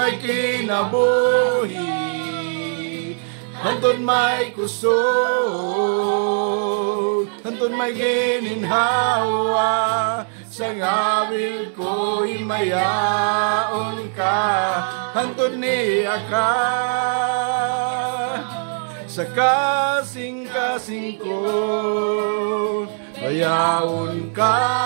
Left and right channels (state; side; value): silent; left; digital silence